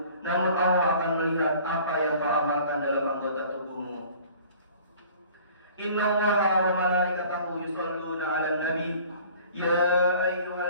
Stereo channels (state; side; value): inverted; both; correlation -0.49